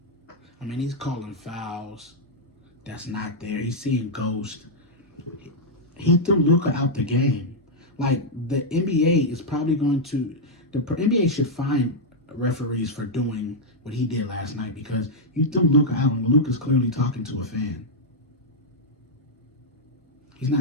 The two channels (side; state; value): both; normal; correlation -0.04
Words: I mean, he's calling fouls that's not there. He's seeing ghosts. He threw Luka out the game. Like, the NBA is probably going to... The NBA should fine referees for doing what he did last night, because you threw Luka out and Luka's clearly talking to a fan. He's